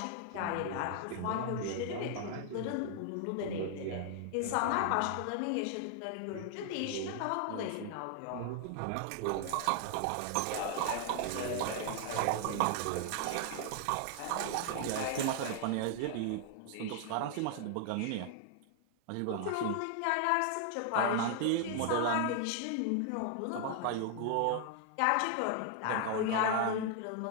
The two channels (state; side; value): different; both; correlation 0.00